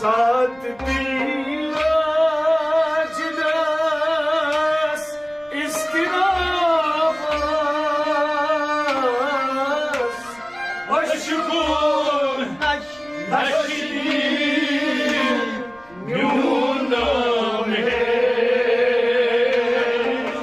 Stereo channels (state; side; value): noise; right; rumble, 27 dB below the sound